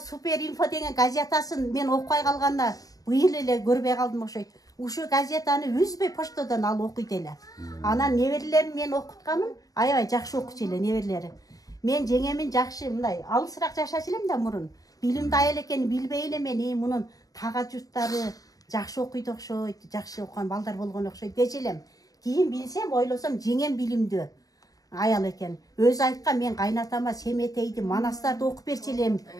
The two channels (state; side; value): late; right; 0.18 ms